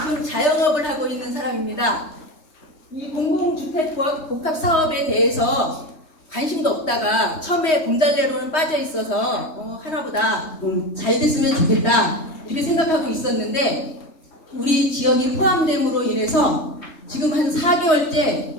자영업을 하고 있는 사람입니다. 이 공공주택 복합 사업에 대해서 관심도 없다가 처음에 공달래로는 빠져 있어서 하나보다 잘 됐으면 좋겠다 이렇게 생각하고 있었는데, 우리 지역이 포함됨으로 인해서 지금 한 4개월째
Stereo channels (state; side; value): late; right; 3.1 ms